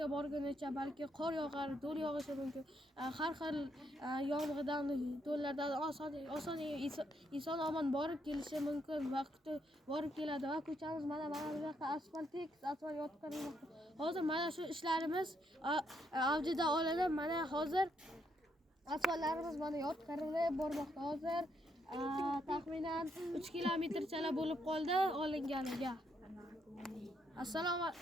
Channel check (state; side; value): normal; both; correlation 0.76